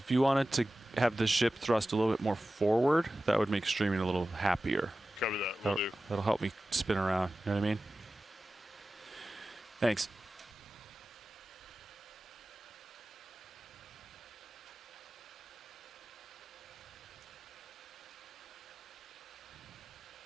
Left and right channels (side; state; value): both; normal; correlation 0.95